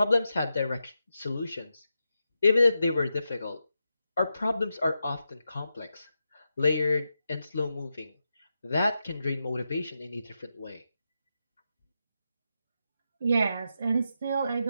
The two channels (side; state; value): both; inverted; correlation -0.87